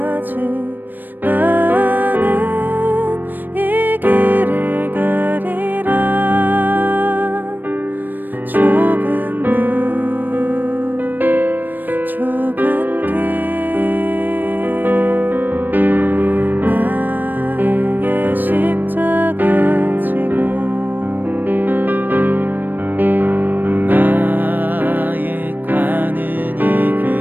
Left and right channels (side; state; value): left; late; 0.090 ms